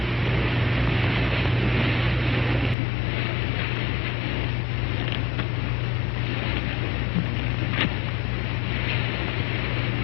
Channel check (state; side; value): drops out; right; at 2.8 s